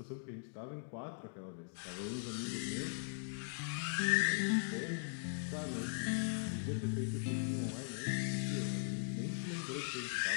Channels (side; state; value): right; silent; digital silence